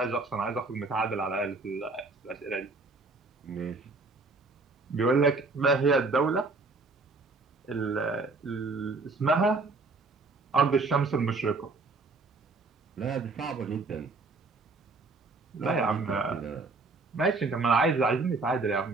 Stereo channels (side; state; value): left; quieter; 3.6 dB